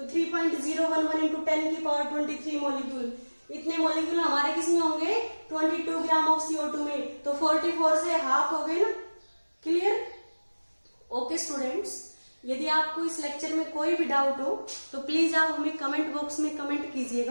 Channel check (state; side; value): inverted; both; correlation -1.00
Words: 3.011 इंटू 10 की पावर 23 मॉलिक्यूल। इतने मॉलिक्यूल हमारे किसमें होंगे 22 ग्राम ऑफ CO2 में। तो 44 से हाफ हो गए ना। क्लियर। ओके स्टूडेंट्स, यदि आपको इस लेक्चर में कोई भी डाउट हो तो प्लीज आप हमें कमेंट बॉक्स में कमेंट